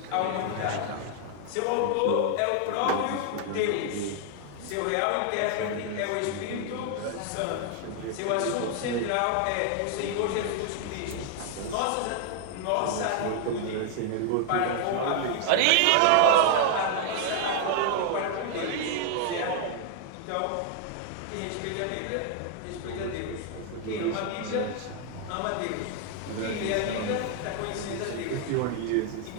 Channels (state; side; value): different; both; correlation 0.00